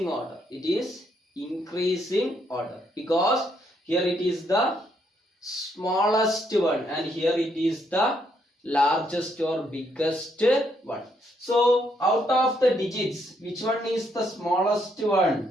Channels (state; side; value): normal; both; correlation 0.74